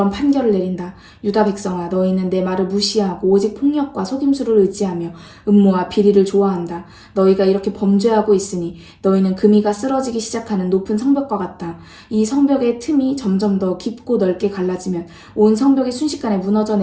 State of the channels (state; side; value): identical; both; correlation 1.00